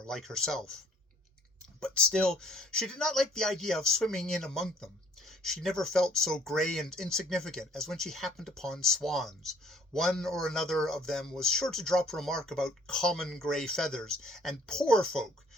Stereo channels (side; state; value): both; normal; correlation 0.58